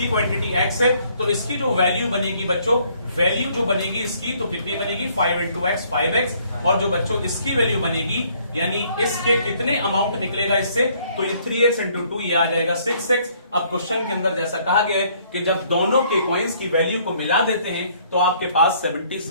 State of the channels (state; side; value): inverted; both; correlation -0.64